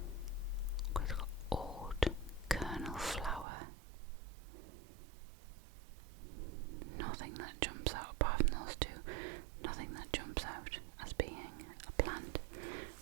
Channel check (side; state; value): left; drops out; at 3.5 s